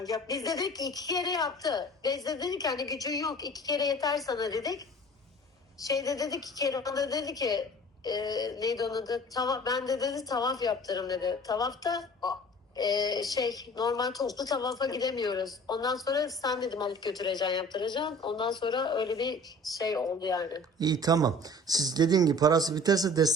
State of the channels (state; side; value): normal; both; correlation 0.46